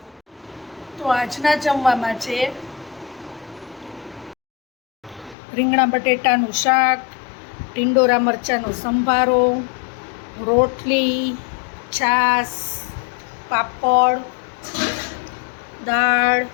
તો આજના જમવામાં છે રીંગણા બટેટાનું શાક, ટીંડોરા મરચાંનો સંભારો, રોટલી, છાશ, પાપડ, દાળ,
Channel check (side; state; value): right; drops out; at 5.4 s